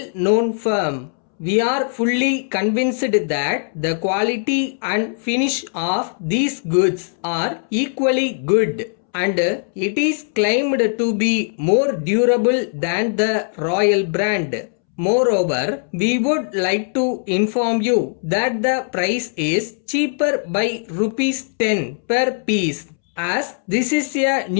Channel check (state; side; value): silent; right; 66 dB below the other